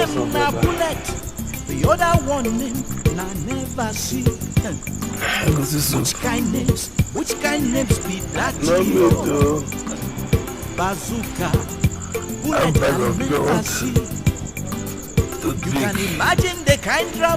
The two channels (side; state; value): both; identical; correlation 1.00